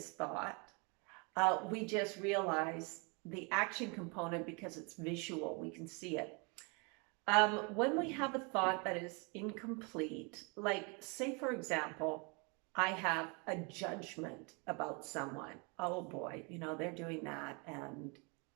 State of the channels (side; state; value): left; quieter; 32.0 dB